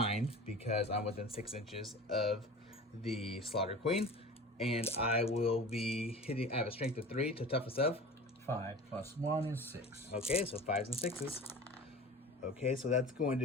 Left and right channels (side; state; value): both; normal; correlation 0.37